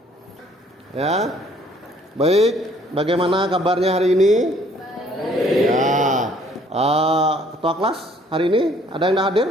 Ya, baik. Bagaimana kabarnya hari ini? Baik. Ya, ketua kelas hari ini ada yang hadir?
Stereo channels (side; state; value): both; normal; correlation 0.60